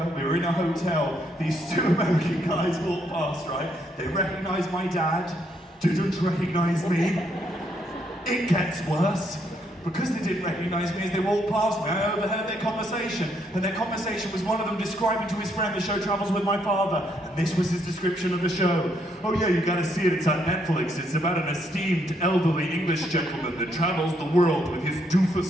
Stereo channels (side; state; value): both; normal; correlation 0.74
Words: we were in a hotel. These two American guys walked past, right? They recognised my dad, didn't recognise me. It gets worse. Because they didn't recognise me as they walked past me, I overheard their conversation. And their conversation was one of them describing to his friend the show Troubles with My Father. And this was his description of the show. Oh yeah, you gotta see it, it's on Netflix. It's about an esteemed elderly English gentleman that travels the world with his doofus